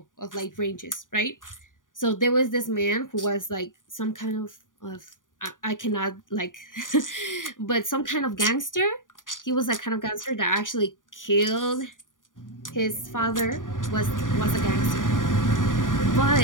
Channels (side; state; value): right; late; 0.88 ms